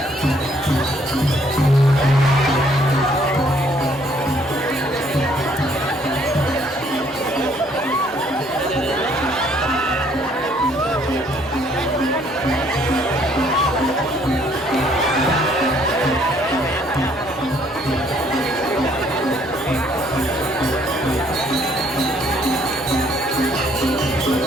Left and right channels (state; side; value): normal; both; correlation 0.64